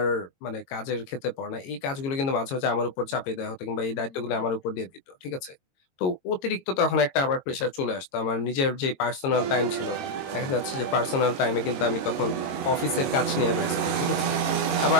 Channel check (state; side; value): late; right; 22 ms